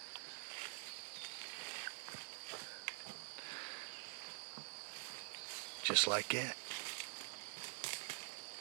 Just like that.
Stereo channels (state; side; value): silent; left; digital silence